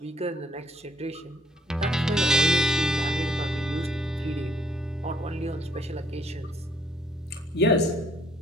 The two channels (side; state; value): both; normal; correlation 0.66